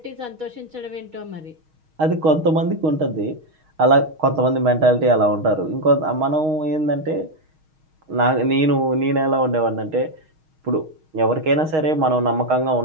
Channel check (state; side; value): late; left; 6.4 ms